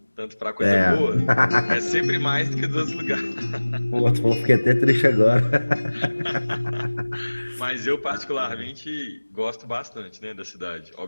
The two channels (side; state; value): both; inverted; correlation -1.00